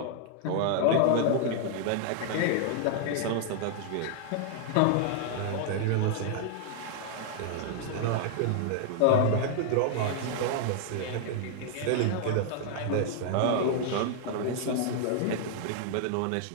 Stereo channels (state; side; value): different; both; correlation 0.00